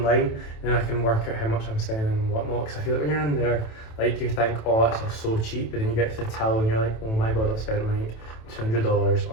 and then I can work out how much I'm spending and whatnot, because I feel like when you're in there, like you think, oh, it's all so cheap, but then you get to the till and you're like, oh my god, I've spent like $200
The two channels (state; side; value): late; right; 27 ms